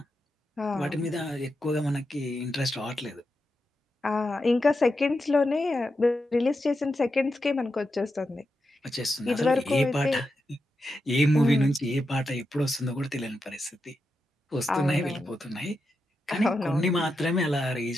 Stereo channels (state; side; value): normal; both; correlation 0.87